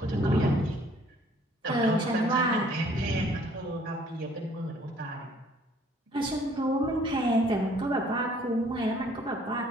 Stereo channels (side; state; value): both; normal; correlation 0.59